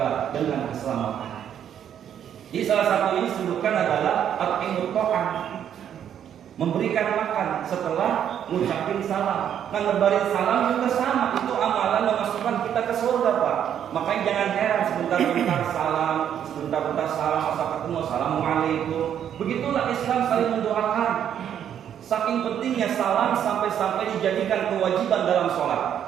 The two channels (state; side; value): quieter; left; 9.4 dB